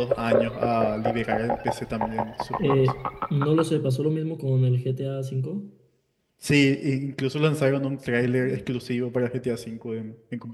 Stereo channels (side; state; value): both; identical; correlation 1.00